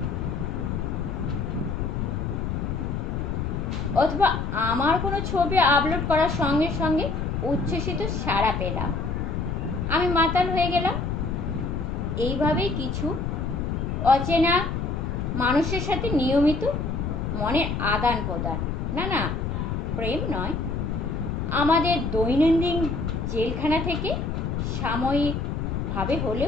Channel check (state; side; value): noise; left; rumble, 2 dB below the sound